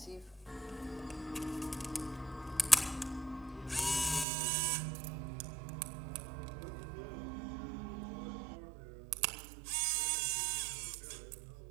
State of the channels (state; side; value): drops out; left; at 4.2 s